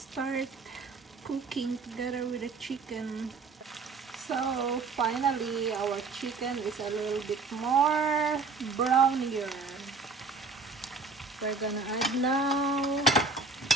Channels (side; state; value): left; quieter; 4.1 dB